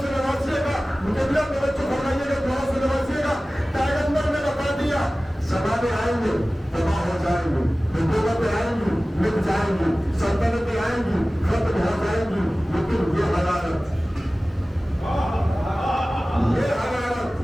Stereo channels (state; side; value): normal; both; correlation 0.97